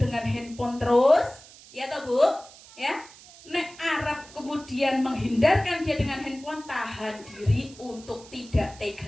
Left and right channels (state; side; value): noise; right; hiss, 21 dB below the sound